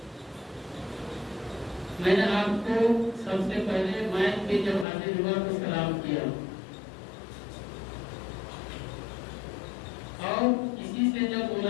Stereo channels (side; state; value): right; drops out; at 4.9 s